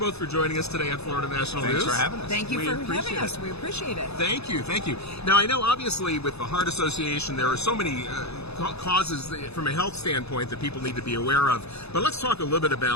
for joining us today at Florida National News. Thanks for having us. Thank you for having us. We appreciate it. Thank you, thank you. Now, I know obviously with the Heart Association there are so many causes from a health standpoint that people need to be aware of, but let's talk a little bit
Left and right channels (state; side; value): late; right; 0.79 ms